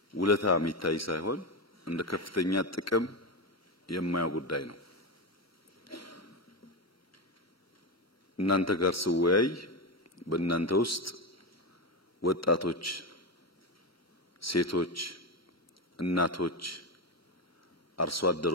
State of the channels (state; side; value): normal; both; correlation 0.13